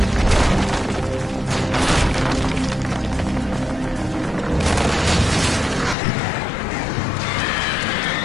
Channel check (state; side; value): drops out; right; at 6.0 s